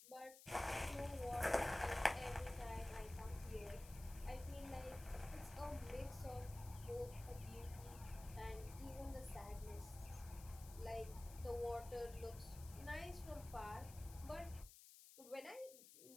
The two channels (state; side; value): noise; left; hiss, 16 dB below the sound